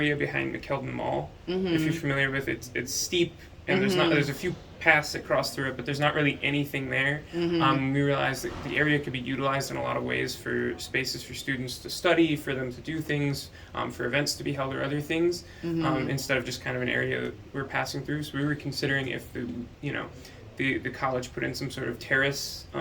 behind McKeldin Mall. If you're familiar with it, it's steep and there's a few paths that cross through it, but there's not really anything there. We realized that the area could be utilized in a lot of ways for spaces for students to study, for them to do things, for events to be held or other things, instead of just kind of an area that we're passing through. So we were considering if the college put in some sort of terrace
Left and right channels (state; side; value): identical; both; correlation 1.00